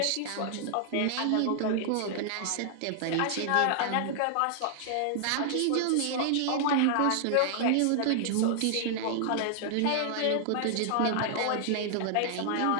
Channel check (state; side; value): different; both; correlation -0.01